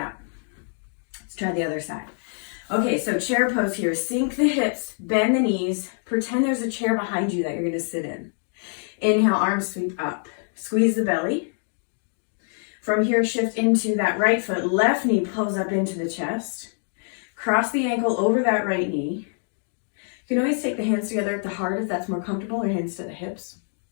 Let's try the other side. Okay, so chair pose here. Sink the hips, bend the knees. Pretend there's a chair behind you that you're gonna sit in. Inhale, arms sweep up. Squeeze the belly. From here, shift into that right foot. Left knee pulls up into the chest. Cross the ankle over that right knee. You can always take the hands together at the heart if that's more comfortable, or hands to the hips.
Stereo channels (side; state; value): right; silent; 57 dB below the other